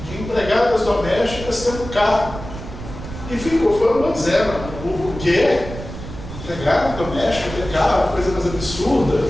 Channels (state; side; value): noise; right; rumble, 11 dB below the sound